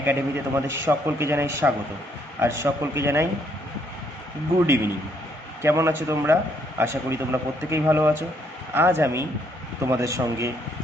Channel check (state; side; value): normal; both; correlation 0.69